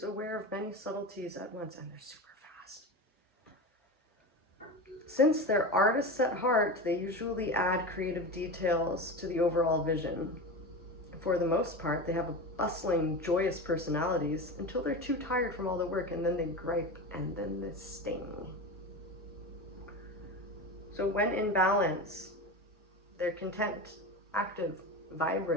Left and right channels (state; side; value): normal; both; correlation 0.24